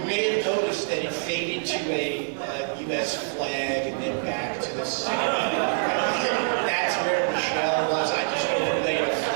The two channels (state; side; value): silent; left; 61 dB below the other